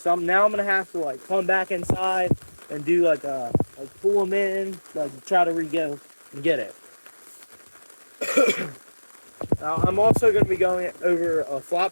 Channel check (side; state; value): both; inverted; correlation -1.00